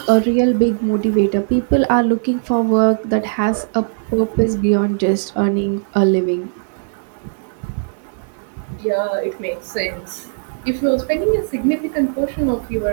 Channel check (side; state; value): left; silent; 64 dB below the other